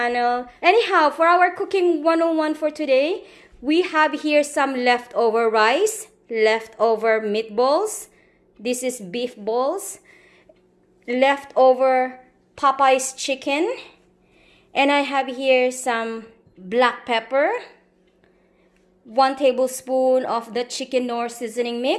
Anyhow, for our Cooking 101 for today, we have here some leftover rice, leftover meatballs. This is beef balls. Leftover Popeye's chicken, and I have here some black pepper, 1 tablespoon of the chicken Knorr seasoning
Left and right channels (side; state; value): both; identical; correlation 1.00